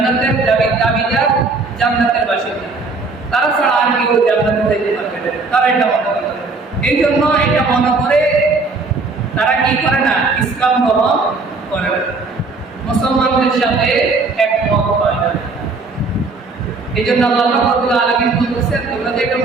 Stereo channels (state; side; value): quieter; left; 3.8 dB